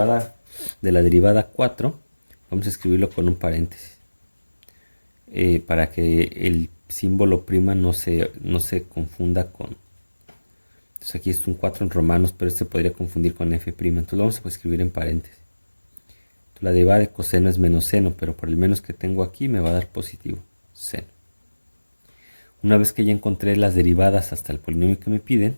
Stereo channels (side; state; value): both; inverted; correlation -1.00